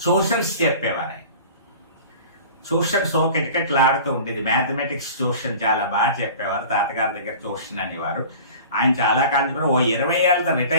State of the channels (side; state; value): both; inverted; correlation -0.41